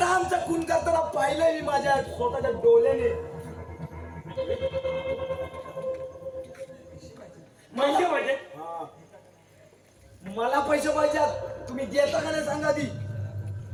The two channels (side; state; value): both; identical; correlation 1.00